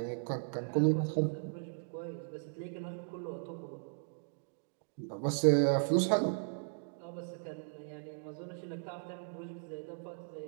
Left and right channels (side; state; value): left; silent; digital silence